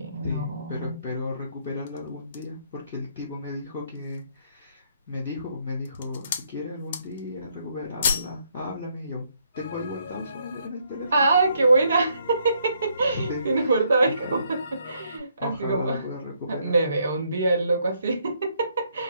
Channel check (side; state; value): both; inverted; correlation -0.71